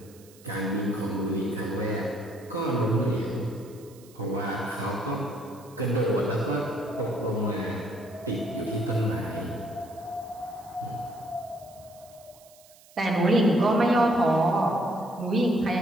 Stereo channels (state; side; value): noise; right; hiss, 25 dB below the sound